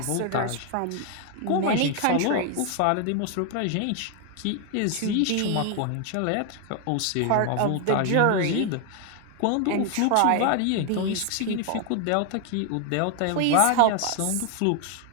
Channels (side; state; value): both; different; correlation 0.00